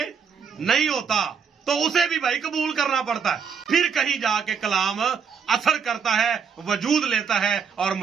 नहीं होता तो उसे भी भाई कबूल करना पड़ता है। फिर कहीं जाके कलाम असर करता है, वजूद लेता है और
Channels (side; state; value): left; quieter; 6.5 dB